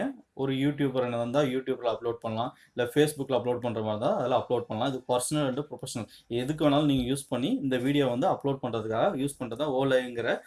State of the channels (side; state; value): both; identical; correlation 1.00